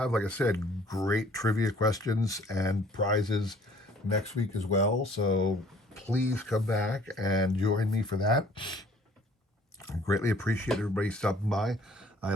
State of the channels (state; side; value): normal; both; correlation 0.56